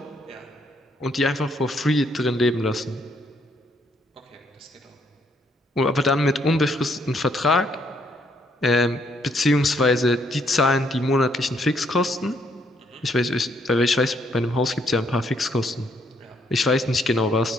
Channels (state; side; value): normal; both; correlation 0.70